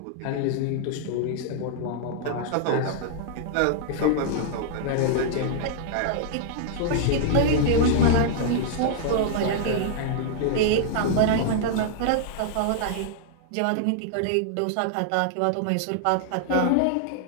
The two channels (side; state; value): both; different; correlation -0.01